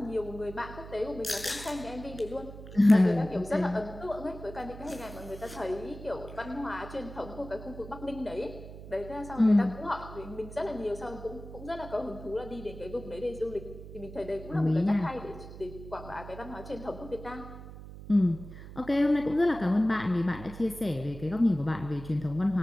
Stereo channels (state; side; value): noise; right; hum, 13 dB below the sound